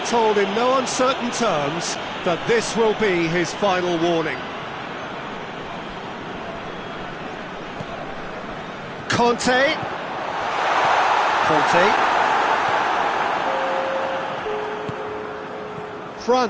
told in no uncertain terms that this will be his final warning. Conte.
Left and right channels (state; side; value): identical; both; correlation 1.00